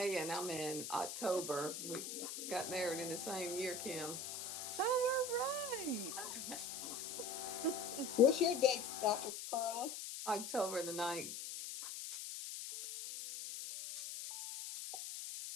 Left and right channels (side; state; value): left; noise; hiss, 6 dB below the sound